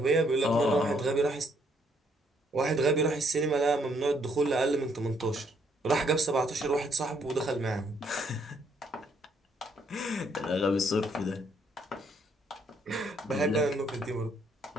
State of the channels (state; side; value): normal; both; correlation 0.70